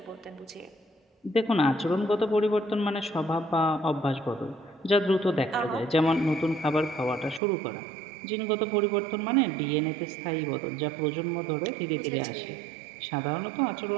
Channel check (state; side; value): drops out; left; at 7.4 s